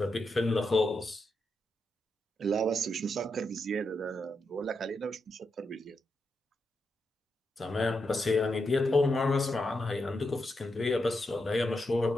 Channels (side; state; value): both; normal; correlation 0.85